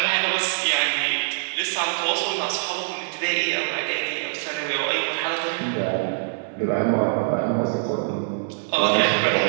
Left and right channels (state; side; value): silent; left; 60 dB below the other